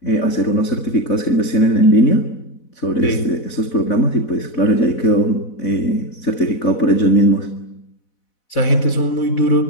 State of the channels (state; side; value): late; right; 4.1 ms